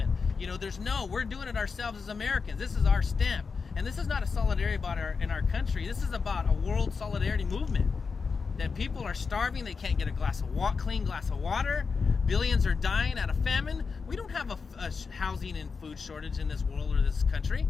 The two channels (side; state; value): right; quieter; 5.1 dB